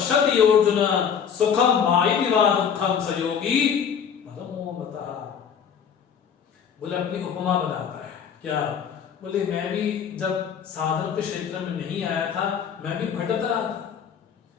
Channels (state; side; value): quieter; right; 7.6 dB